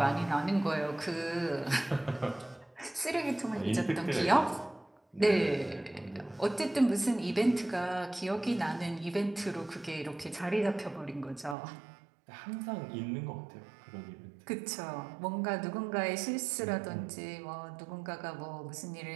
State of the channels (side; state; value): left; drops out; at 11.6 s